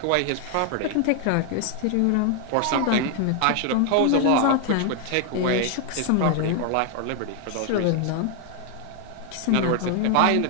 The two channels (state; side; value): different; both; correlation 0.01